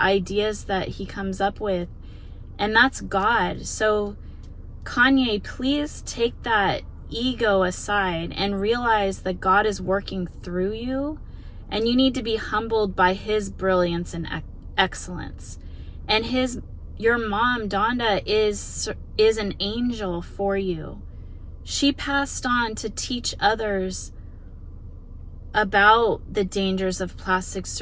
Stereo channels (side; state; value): both; identical; correlation 1.00